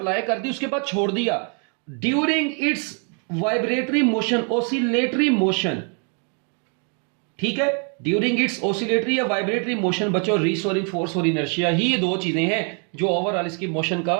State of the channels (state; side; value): quieter; left; 38.6 dB